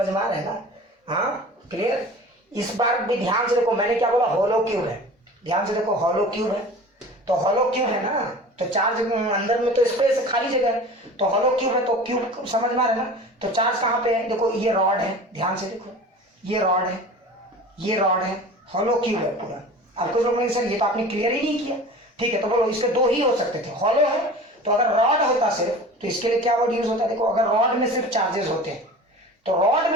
में आ रहा है ना? हाँ, क्लियर। इस बार भी ध्यान से देखो, मैंने क्या बोला? हॉलो क्यूब है, ध्यान से देखो, हॉलो क्यूब है, तो हॉलो क्यूब है ना, तो चार्ज अंदर में तो स्पेस खाली जगह है, तो हॉलो क्यूब है, तो क्यूब समझ में आ रहा है ना। तो चार्ज कहाँ पे है? देखो ये रॉड है, ध्यान से देखो, ये रॉड है, ये रॉड है, हॉलो क्यूब है पूरा। अब कुछ लोग सर ये तो आपने क्लियर ही नहीं किया, ठीक है, तो बोलो इसके दो ही हो सकते थे, हॉलो है, तो अगर रॉड होता सिर्फ, तो इसके लिए क्या वर्ड यूज होता है? देखो, अगर रॉड में सिर्फ चार्जेस होते हैं, तो रॉड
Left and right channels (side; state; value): both; normal; correlation 0.39